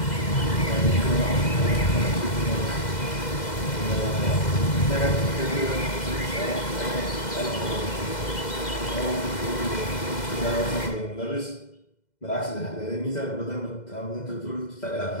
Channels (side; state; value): right; late; 2.0 ms